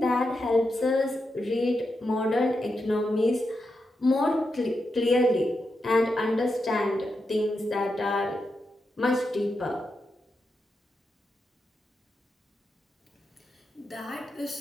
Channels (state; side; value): normal; both; correlation 0.86